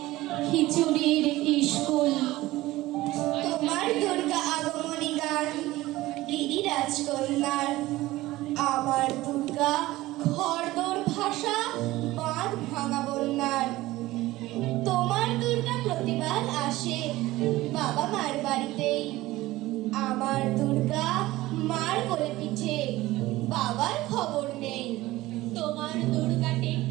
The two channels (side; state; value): left; quieter; 17.7 dB